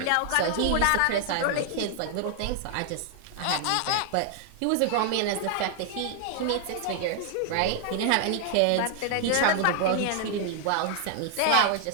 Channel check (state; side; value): different; both; correlation 0.00